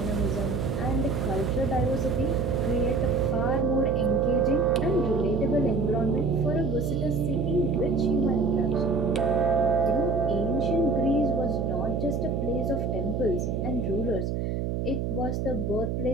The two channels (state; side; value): noise; right; hum, 1 dB below the sound